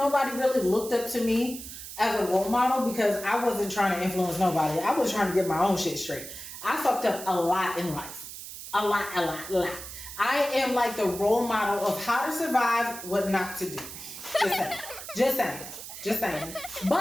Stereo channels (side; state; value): right; noise; hiss, 11 dB below the sound